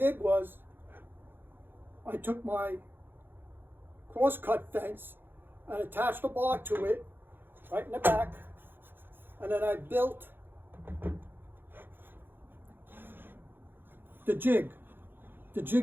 was I took my cross-cut fence and attached a bar to it right in the back, and then I built the jig. The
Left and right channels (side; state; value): left; late; 0.099 ms